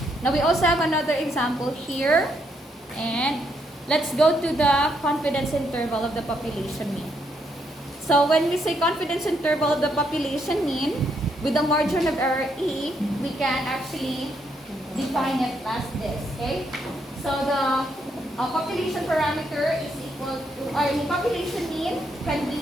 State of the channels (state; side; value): normal; both; correlation 0.75